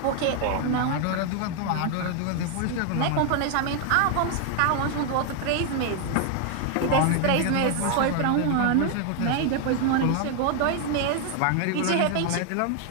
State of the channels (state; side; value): different; both; correlation 0.00